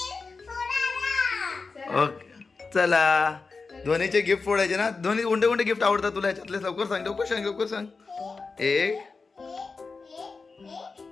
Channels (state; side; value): quieter; right; 4.3 dB